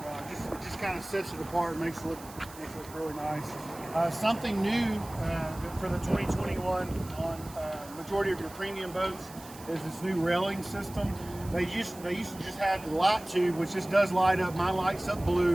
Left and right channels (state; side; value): noise; right; hiss, 18 dB below the sound